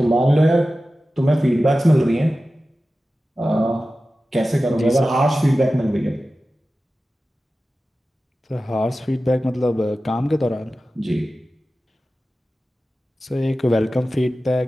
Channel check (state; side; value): normal; both; correlation 0.94